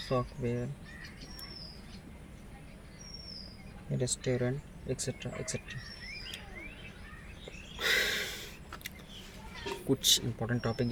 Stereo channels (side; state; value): both; identical; correlation 1.00